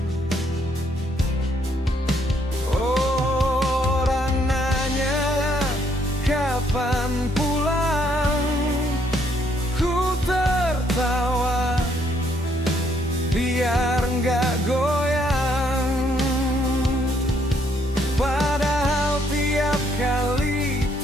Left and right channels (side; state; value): both; normal; correlation 0.70